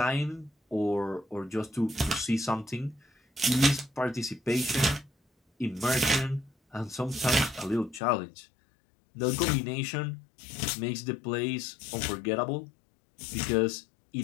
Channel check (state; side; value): drops out; right; at 8.0 s